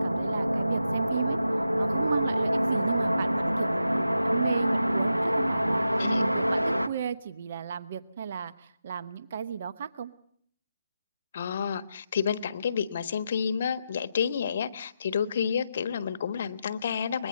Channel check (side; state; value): both; inverted; correlation -0.87